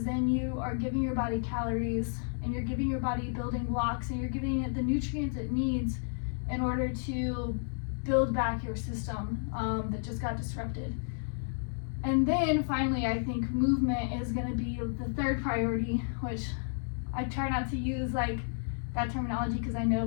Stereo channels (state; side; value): silent; right; digital silence